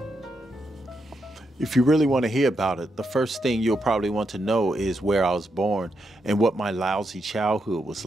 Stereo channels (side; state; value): both; normal; correlation 0.82